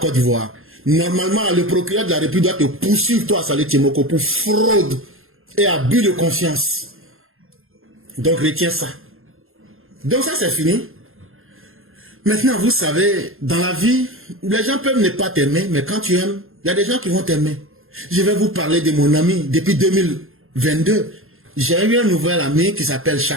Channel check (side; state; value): left; late; 0.61 ms